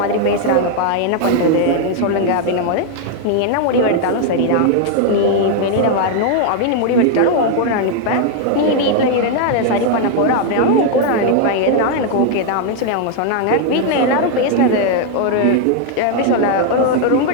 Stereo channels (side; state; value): both; different; correlation 0.00